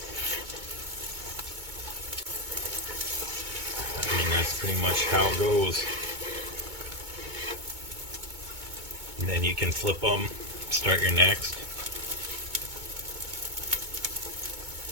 I mean, that's pretty much how it goes. And then you can flip them, start your next.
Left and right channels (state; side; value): late; left; 2.2 ms